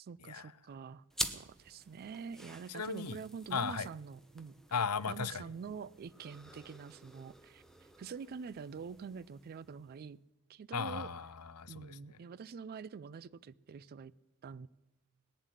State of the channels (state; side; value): normal; both; correlation 0.09